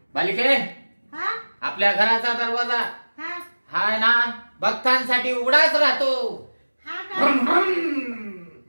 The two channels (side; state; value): both; inverted; correlation -1.00